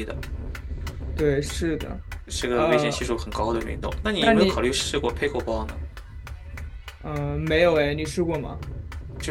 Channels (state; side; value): identical; both; correlation 1.00